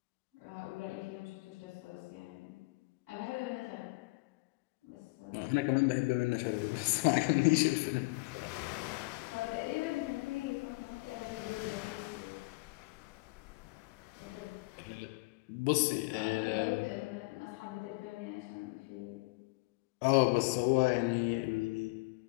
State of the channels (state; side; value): quieter; right; 25.9 dB